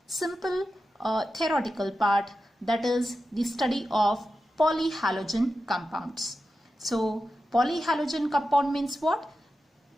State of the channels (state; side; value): normal; both; correlation 0.91